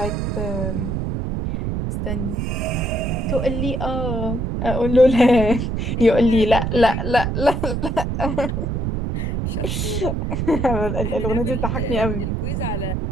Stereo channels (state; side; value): noise; right; rumble, 1 dB below the sound